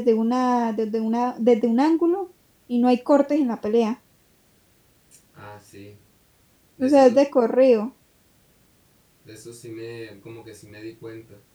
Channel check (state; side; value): identical; both; correlation 1.00